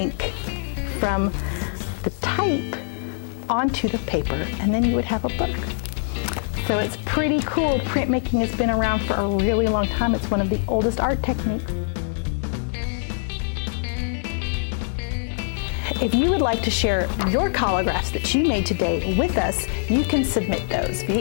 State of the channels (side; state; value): right; silent; digital silence